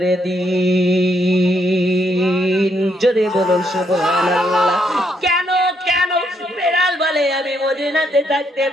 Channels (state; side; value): normal; both; correlation 0.75